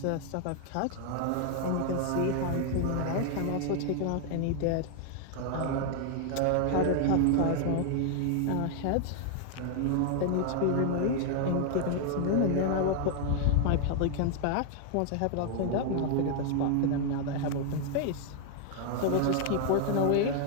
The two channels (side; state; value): both; different; correlation 0.00